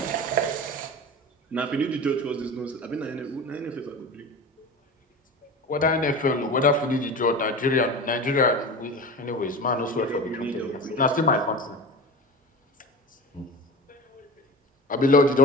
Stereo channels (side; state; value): both; normal; correlation 0.31